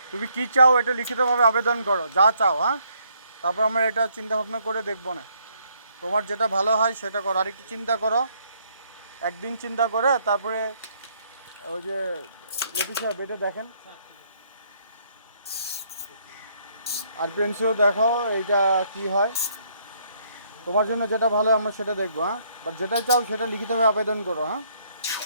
তুমি কি চাও এটা লিখিতভাবে আবেদন করো, যা চাও, হ্যাঁ, তারপর আমরা এটা চিন্তা ভাবনা করে দেখবো না। তোমার যেটা ভালো হয় সেটা করো, আর একটু চিন্তা করো, একদিন চিন্তা করে তারপরে ওই যে লতিফ সাহেব এটা দেখেন, আর প্রিন্সিও দেখো এইটা কি হয়। তোমার জন্য যেটা ভালো আমরা সেটা দেখবো, হ্যাঁ, বাট যেটা চাও সেটা লিখিতভাবে আবেদন করো, হ্যাঁ।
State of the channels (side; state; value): both; inverted; correlation -0.69